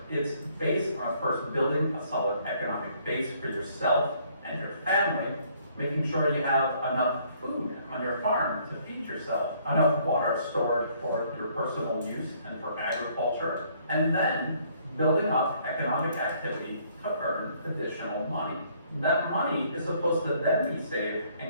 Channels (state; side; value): inverted; both; correlation -0.64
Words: It's based on first building a solid economic base for yourself and your family, making sure you have enough food on your farm to feed yourself, enough water stored for your personal use and for agriculture, and then building up economic activity to earn additional money. That money is supposed to then be saved